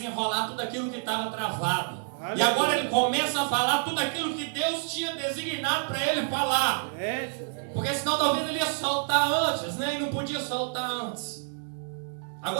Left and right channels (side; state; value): left; silent; digital silence